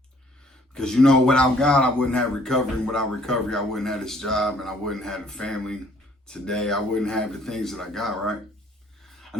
Because, without God, I wouldn't have recovery. And without recovery, I wouldn't have this job and I wouldn't have a family today. I wouldn't have the things that I got, right? I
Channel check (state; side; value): normal; both; correlation 0.60